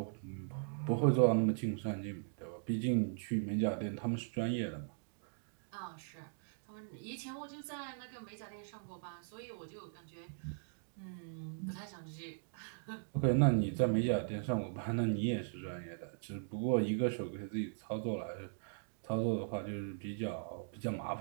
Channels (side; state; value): left; silent; digital silence